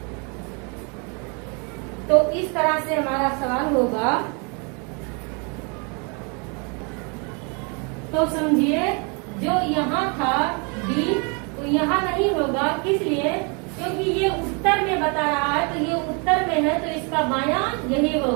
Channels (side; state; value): left; quieter; 34.0 dB